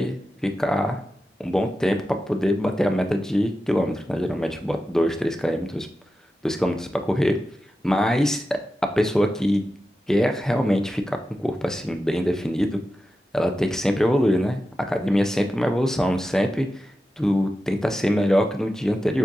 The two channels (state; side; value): normal; both; correlation 0.91